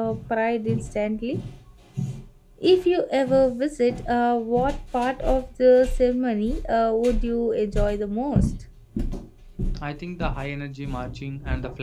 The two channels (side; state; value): both; identical; correlation 1.00